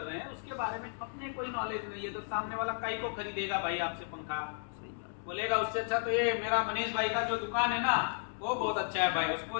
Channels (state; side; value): silent; right; digital silence